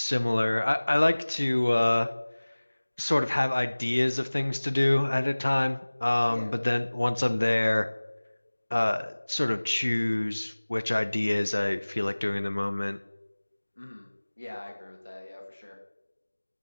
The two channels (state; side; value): inverted; both; correlation -1.00